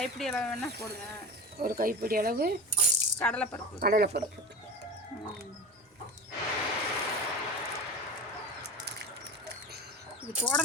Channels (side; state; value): both; normal; correlation 0.29